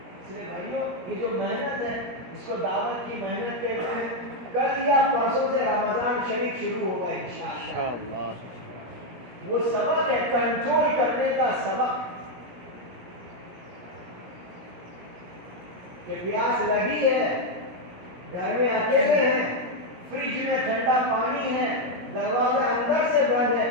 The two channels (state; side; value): late; left; 17 ms